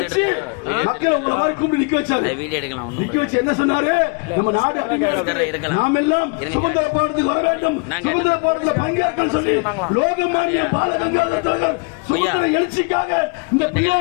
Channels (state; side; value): quieter; right; 32.8 dB